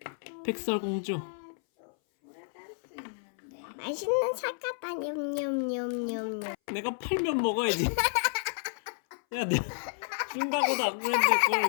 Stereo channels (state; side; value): silent; right; 57 dB below the other